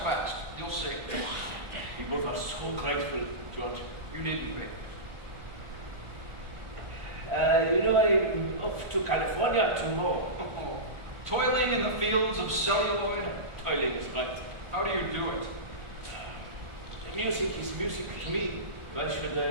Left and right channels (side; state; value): left; late; 1.4 ms